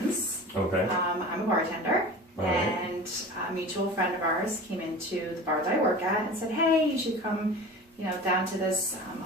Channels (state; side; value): normal; both; correlation 0.36